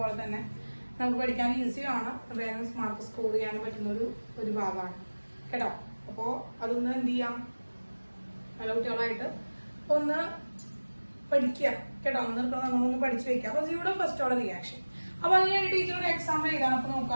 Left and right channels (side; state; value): both; inverted; correlation -1.00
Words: തന്നെ നമുക്ക് പഠിക്കാൻ ഈസിയാണ്, വേഗം മാർക്ക് സ്കോർ ചെയ്യാൻ പറ്റുന്ന ഒരു ഭാഗമാണ് കേട്ടോ. അപ്പോ അതൊന്ന് എന്ത് ചെയ്യാം, നല്ല കുട്ടികളായിട്ട് ഒന്ന് പഠിക്കുക കേട്ടോ. നമ്മളൊന്ന് പഠിച്ചു വെക്കാം. അപ്പൊ ഇവിടെ ഫസ്റ്റ് ഓർഡർ റിയാക്ഷൻ. അപ്പൊ അതിന് ടീച്ചർ ഒരു എക്സാമ്പിൾ എഴുതാം. അപ്പൊ